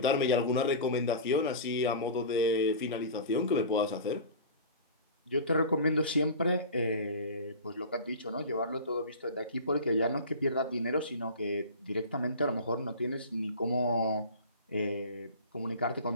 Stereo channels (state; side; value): inverted; both; correlation -0.34